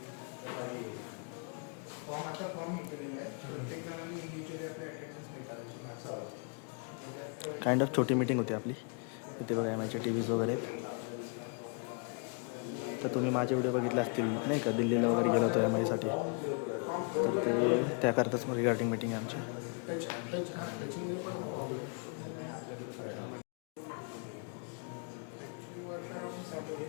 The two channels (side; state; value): right; quieter; 37.2 dB